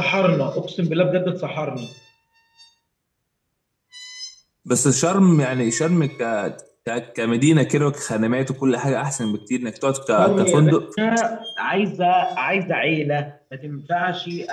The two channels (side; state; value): both; identical; correlation 1.00